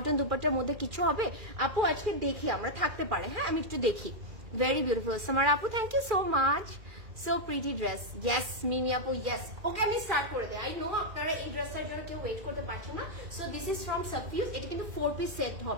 দুপাট্টার মধ্যে কিছু হবে আপু? আজকে দেখি আমরা, থাকতে পারে, হ্যাঁ আমি একটু দেখি। ভেরি বিউটিফুল সামার আপু, thank you so much, so pretty dress. Yes Mimi আপু, ইয়েস। ওকে আমি স্টার্ট করে দিই। আই নো আপনারা এই ড্রেসটার জন্য কেউ ওয়েট করতে পারছেন না। So this is from Safiuz. এটা কিন্তু 4 পিস সেট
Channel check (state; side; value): late; left; 2.4 ms